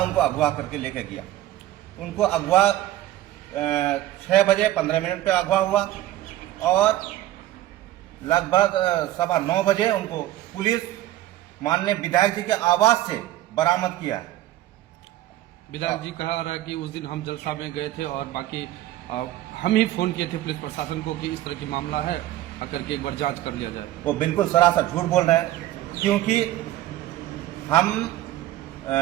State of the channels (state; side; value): quieter; left; 14.5 dB